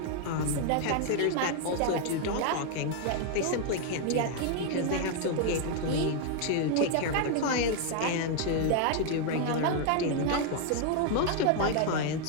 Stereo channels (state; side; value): different; both; correlation 0.00